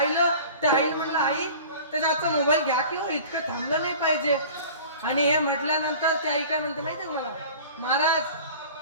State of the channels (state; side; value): inverted; both; correlation -0.42